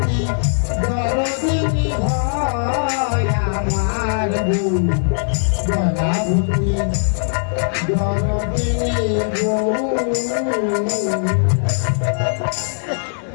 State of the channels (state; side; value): silent; right; digital silence